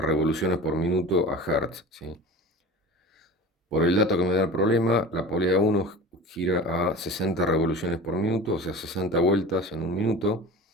por minuto a hertz, ¿sí? Por el dato que me da el problema, la polea 1 gira a 60 revoluciones por minuto, o sea, 60 vueltas en un minuto.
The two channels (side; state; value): both; normal; correlation 0.36